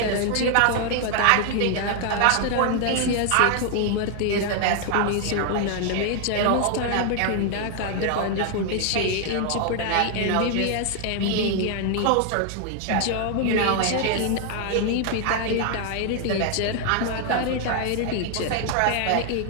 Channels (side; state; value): both; different; correlation 0.00